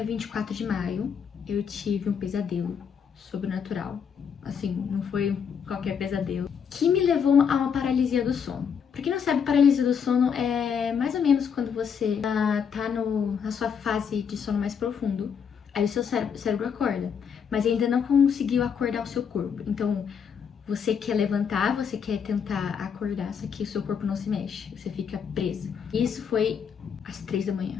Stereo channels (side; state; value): right; quieter; 7.0 dB